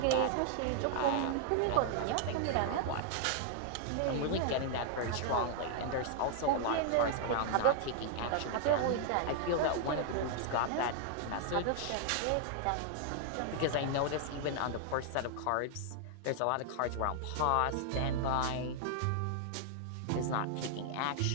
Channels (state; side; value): different; both; correlation 0.00